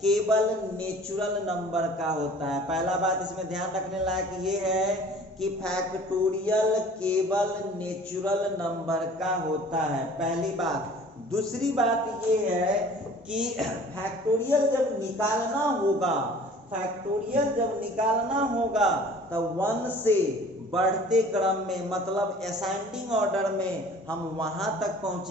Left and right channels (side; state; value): both; normal; correlation 0.48